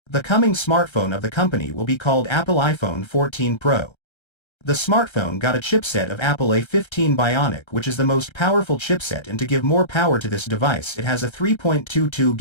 The coming smartphone of the company will be called Apple iPhone 14 Pro. The smartphone got a chipset of Apple A15 Bionic, which is the most powerful chipset, and to give more power to this device it has a 3.22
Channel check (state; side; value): late; right; 1.3 ms